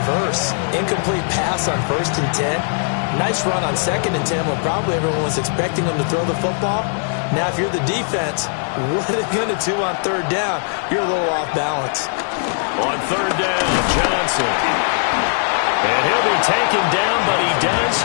Incomplete pass on 1st and 10. Nice run on 2nd and 10 when probably everyone was expecting him to throw the football. Now, if you're the defense, what are they going to do on 3rd down? You're a little off balance. On 3rd down, Johnson. And he'll be taken down, but he does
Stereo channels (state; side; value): silent; right; digital silence